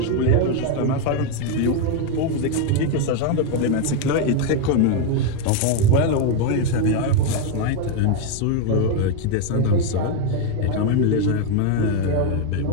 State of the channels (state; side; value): different; both; correlation 0.01